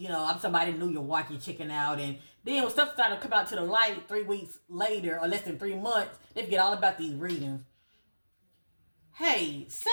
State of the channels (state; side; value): inverted; both; correlation -1.00